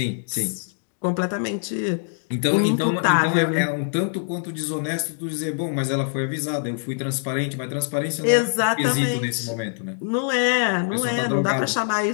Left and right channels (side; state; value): right; silent; digital silence